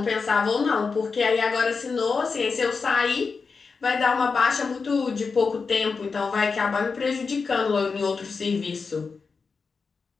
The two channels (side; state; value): right; quieter; 4.9 dB